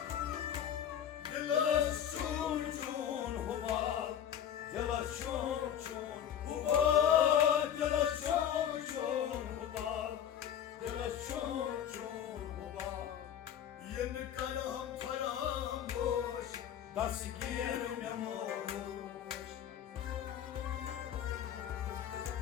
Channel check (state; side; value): quieter; right; 9.7 dB